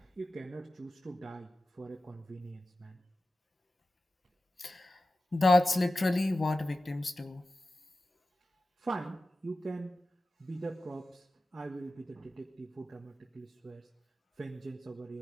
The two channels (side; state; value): both; normal; correlation 0.94